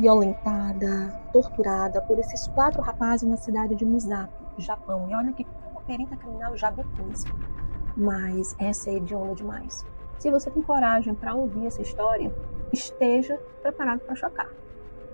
torturada por esses 4 rapazes na cidade de Misato, Japão. E olha que como perita criminal já vi coisa, mas essa é hedionda demais. Se você tem coragem para ouvir essa história, esteja preparado para chocar.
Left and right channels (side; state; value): both; inverted; correlation -1.00